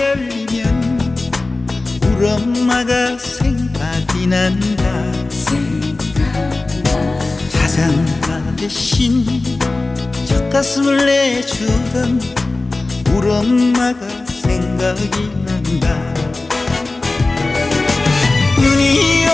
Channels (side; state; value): right; quieter; 3.2 dB